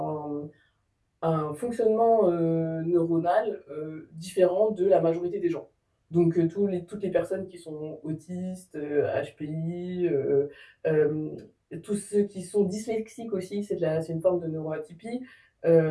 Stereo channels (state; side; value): identical; both; correlation 1.00